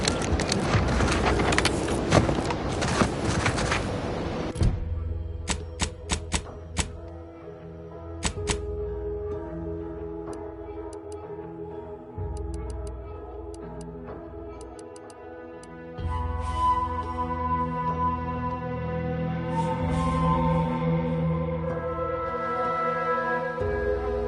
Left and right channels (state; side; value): identical; both; correlation 1.00